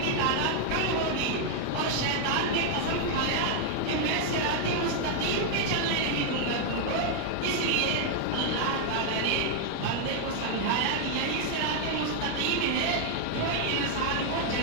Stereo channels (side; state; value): both; different; correlation 0.00